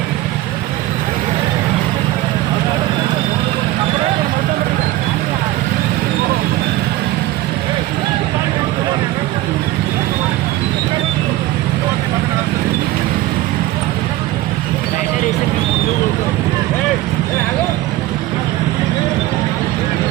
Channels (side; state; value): left; quieter; 16.4 dB